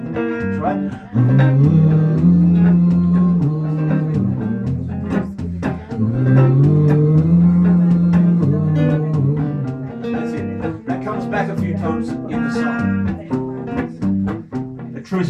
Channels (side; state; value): both; identical; correlation 1.00